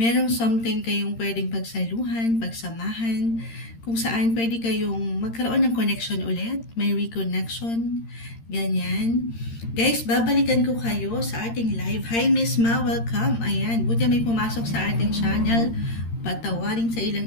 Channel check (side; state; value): right; late; 13 ms